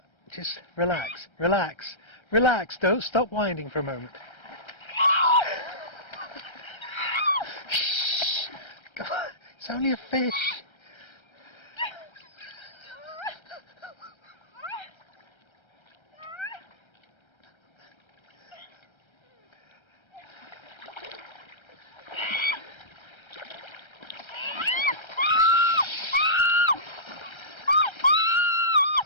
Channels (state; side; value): late; right; 1.3 ms